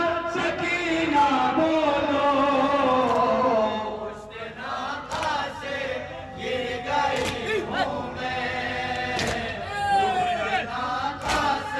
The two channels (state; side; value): identical; both; correlation 1.00